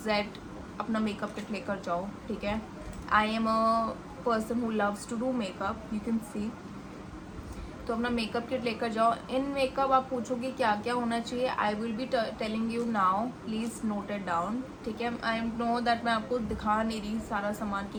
Z अपना मेकअप किट लेकर जाओ. ठीक है, I am a person who loves to do makeup, you can see. तो अपना मेकअप किट लेकर जाओ. इन मेकअप आप पूछोगे क्या क्या होना चाहिए. I will be telling you now, please note it down. ठीक है, आई नो दैट मैं आपको दिखा नहीं रही सारा सामान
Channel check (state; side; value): identical; both; correlation 1.00